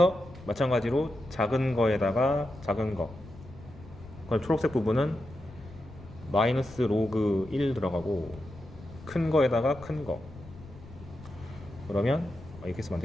마찬가지로 작은 거에다가 작은 거, 그럼 초록색 부분은 마이너스 로그 1 들어가고 큰 거에다가 큰 거, 그러면 이렇게 쓰면 안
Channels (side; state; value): left; noise; rumble, 18 dB below the sound